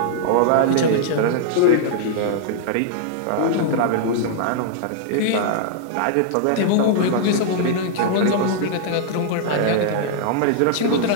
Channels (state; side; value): different; both; correlation -0.01